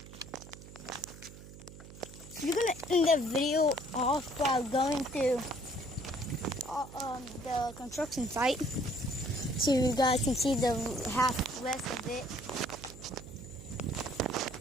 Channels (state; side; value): noise; right; hum, 16 dB below the sound